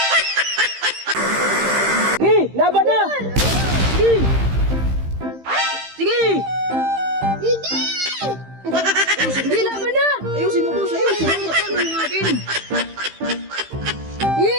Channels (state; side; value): late; left; 15 ms